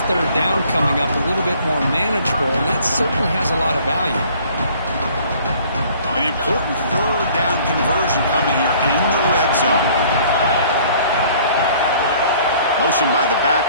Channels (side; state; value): both; inverted; correlation -0.55